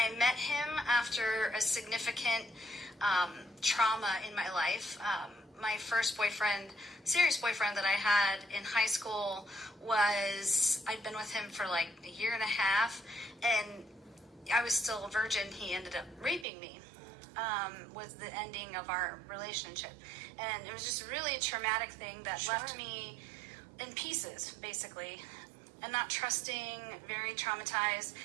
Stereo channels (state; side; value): drops out; left; at 16.4 s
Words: met him after a significant trauma in my life. My first boyfriend, serious boyfriend that I had in high school I'd been with him for like a year and a half, and I was still a virgin. He ended up raping me. Was the ending of our relationship. And it was just really a traumatic thing that left me in pieces, basically. And not trusting, very traumatized.